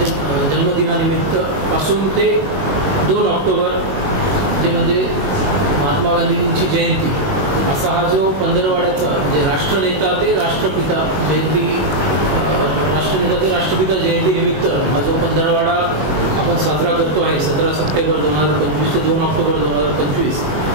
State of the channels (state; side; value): late; left; 21 ms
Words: जन्मदिनानिमित्त पासून ते 2 ऑक्टोबर जे म्हणजे महात्मा गांधीजींची जयंती असा हा जो पंधरवड्याचा म्हणजे राष्ट्रनेता ते राष्ट्रपिता जयंती, राष्ट्रनेता ते राष्ट्रपिता जयंती निमित्त हा जो पंधरवडा आपण साजरा करतो आहे 17 सप्टेंबर 2025 ते 2 ऑक्टोबर 2025